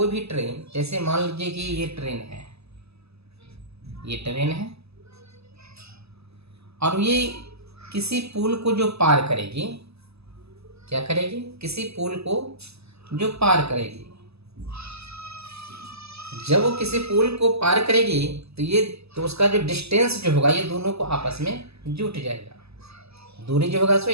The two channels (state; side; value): late; left; 0.79 ms